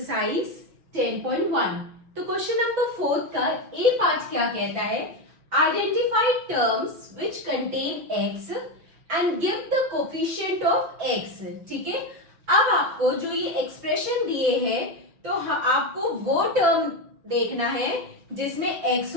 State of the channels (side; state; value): left; late; 6.1 ms